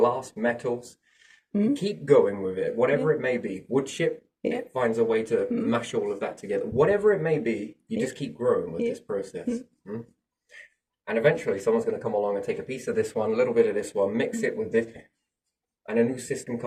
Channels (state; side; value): identical; both; correlation 1.00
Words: metals, keep going with it, whatever it may be. Wood chip, it finds a way to mash all of that together. Whatever it may be, you just keep growing with this process. And eventually someone's going to come along and take a piece of this one, a little bit of this one, mix it with this, and a new system